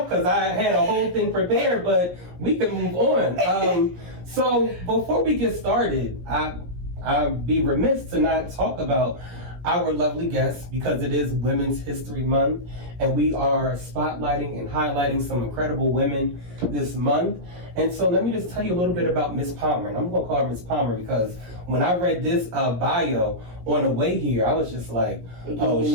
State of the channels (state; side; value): late; left; 17 ms